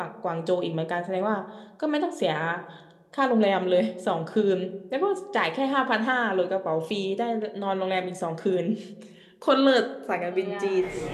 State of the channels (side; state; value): both; identical; correlation 1.00